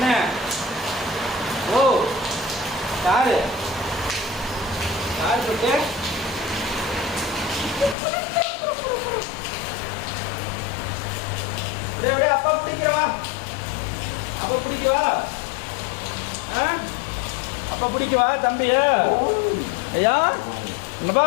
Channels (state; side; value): drops out; right; at 8.0 s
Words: ஓ காரு போட்டு அப்படியே அப்பா பிடிக்கிறவா. அப்பா பிடிக்கவா? அப்பா பிடிக்கவா தம்பியா? ஐயா என்னப்பா